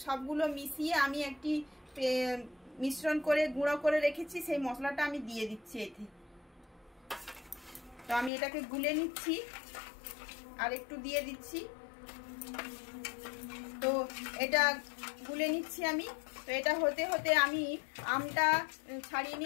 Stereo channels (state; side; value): drops out; right; at 8.3 s